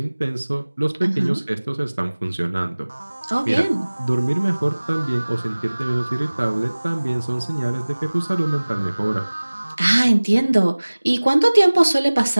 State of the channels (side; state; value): both; inverted; correlation -1.00